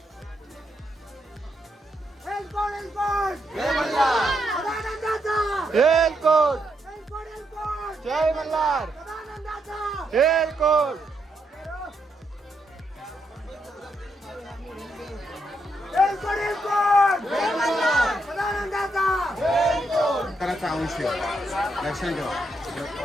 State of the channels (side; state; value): both; normal; correlation 0.79